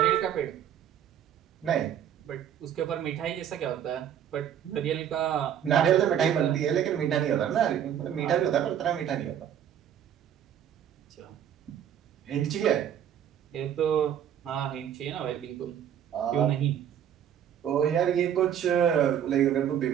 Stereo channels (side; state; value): left; quieter; 9.7 dB